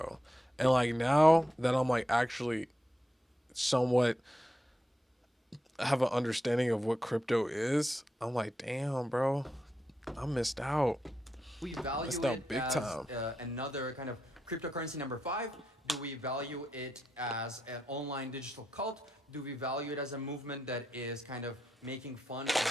And like now that I'm like actually somewhat have an understanding of what crypto is, I'm like, damn, bro, I missed out. We value Missed out it big as time. another kind of cryptocurrency number 5? Do we value it as an online digital cult? Do we value it as a movement that is kind of making fun of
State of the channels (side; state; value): both; normal; correlation 0.85